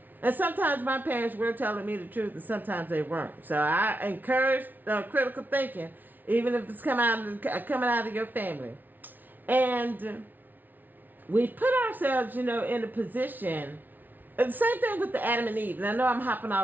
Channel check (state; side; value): late; left; 0.085 ms